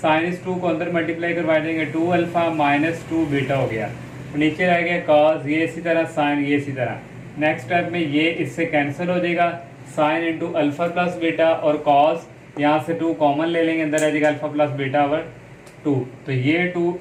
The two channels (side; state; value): both; identical; correlation 1.00